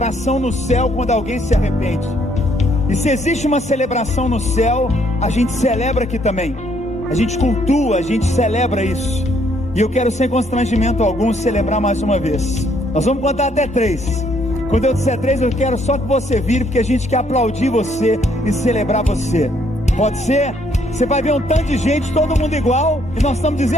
no céu quando alguém se arrepende. E se existe uma celebração no céu, a gente celebra aqui também. A gente cultua, a gente celebra isso. E eu quero, sem constrangimento algum, celebrar mais uma vez. Nós vamos contar até 3. Quando eu disser 3, eu quero só que você vire, porque a gente quer aplaudir você e celebrar você. Pode ser? Você vai ver um tanto de gente, todo mundo igual, e nós estamos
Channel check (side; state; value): both; normal; correlation 0.68